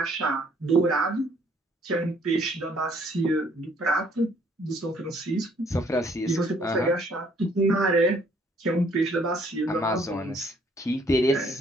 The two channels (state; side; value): normal; both; correlation 0.64